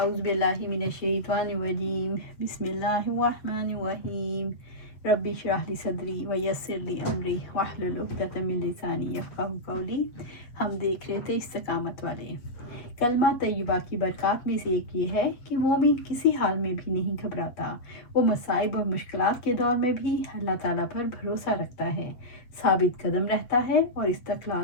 باللہ من الشیطان الرجیم بسم اللہ الرحمن الرحیم رب اشرح لی صدری ویسر لی امری واحلل عقدۃ من لسانی یفقہوا قولی۔ ہم دیکھ رہے تھے استقامت والے کلمہ طیبہ کی برکات میں سے ایک یہ ہے کہ مومن کسی حال میں بھی نہیں گھبراتا۔ وہ مصائب اور مشکلات کے دور میں بھی اللہ تعالیٰ پر بھروسہ رکھتا ہے، ثابت قدم رہتا ہے اور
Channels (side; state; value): right; late; 7.8 ms